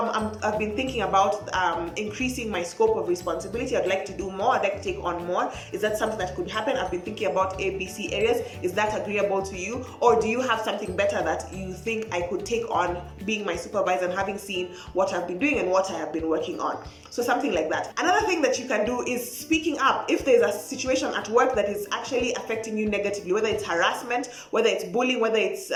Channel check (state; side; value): identical; both; correlation 1.00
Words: been thinking about increasing my scope of responsibility. I'd like to do more. I'd like to take on more. Is that something that could happen? I've been thinking about ABC areas. Is that agreeable to you? Or do you have something better that you think I could take on being my supervisor and having seen what I've been doing and what I have been working on? So something like that. Another thing that you can do is speaking up. If there's a situation at work that is actually affecting you negatively, whether it's harassment, whether it's bullying, whether it's,